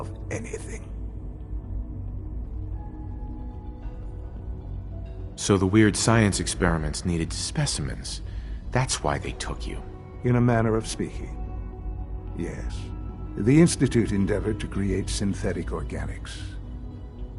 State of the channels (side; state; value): both; identical; correlation 1.00